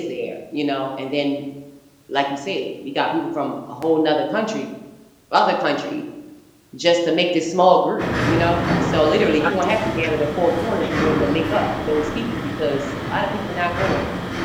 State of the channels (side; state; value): both; identical; correlation 1.00